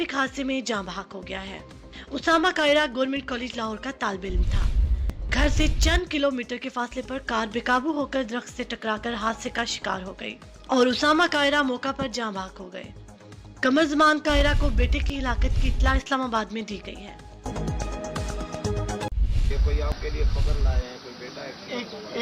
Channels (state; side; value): identical; both; correlation 1.00